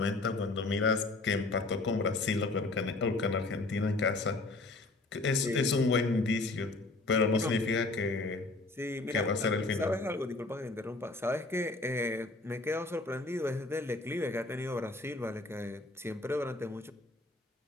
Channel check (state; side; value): quieter; right; 3.2 dB